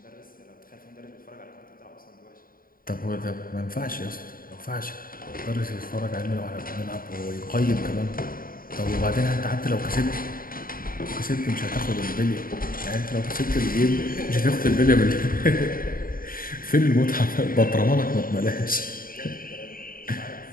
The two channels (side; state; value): right; late; 0.41 ms